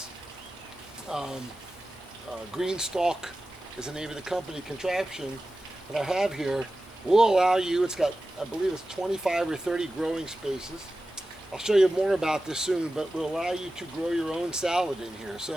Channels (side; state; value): both; normal; correlation 0.94